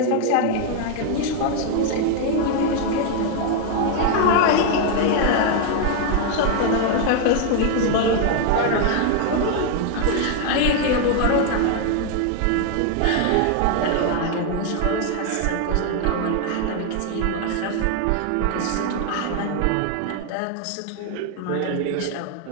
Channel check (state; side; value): different; both; correlation 0.01